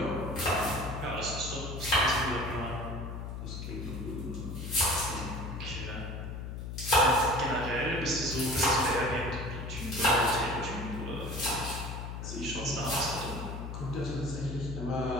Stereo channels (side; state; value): left; noise; hum, 6 dB below the sound